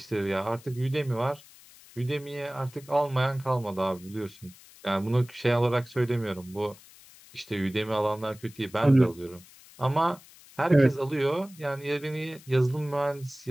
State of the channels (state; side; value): noise; left; hiss, 23 dB below the sound